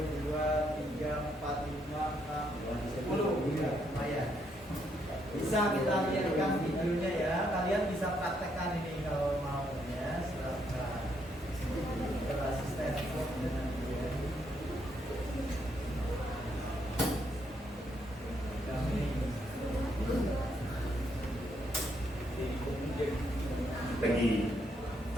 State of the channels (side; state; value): both; normal; correlation 0.75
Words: 3, 4, 5, 6, 10. Ya, lumayan. Bisa kita lihatkan videonya ya. Kalian bisa praktekkan ini kalau mau ya. Silakan. Google Assistant dengan dia. Pagi.